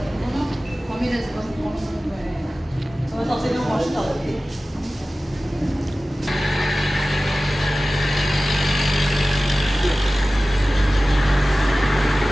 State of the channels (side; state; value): both; normal; correlation 0.96